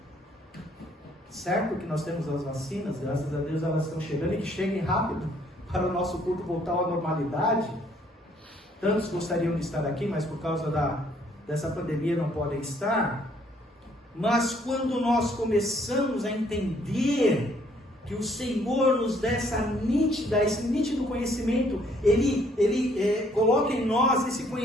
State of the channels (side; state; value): both; normal; correlation 0.65